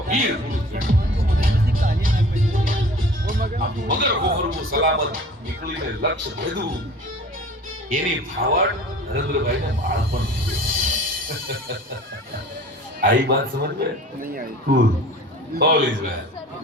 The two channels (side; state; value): both; normal; correlation 0.44